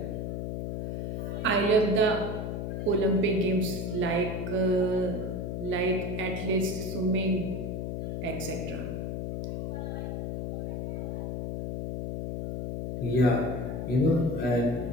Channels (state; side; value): noise; left; hum, 3 dB below the sound